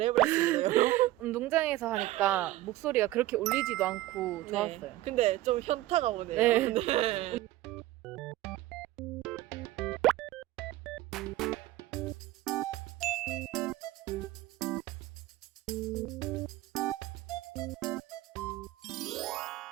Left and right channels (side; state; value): left; quieter; 16.5 dB